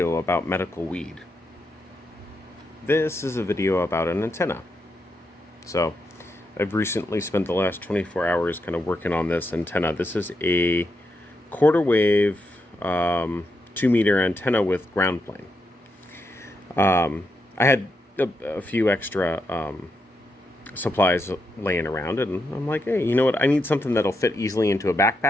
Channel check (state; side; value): normal; both; correlation 0.83